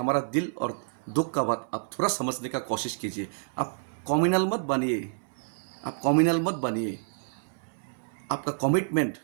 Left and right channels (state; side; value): silent; left; 59 dB below the other